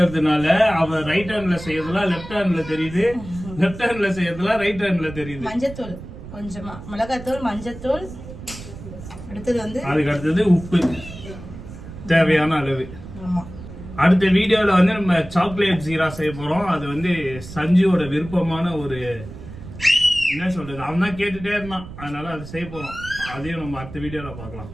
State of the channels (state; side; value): noise; right; rumble, 13 dB below the sound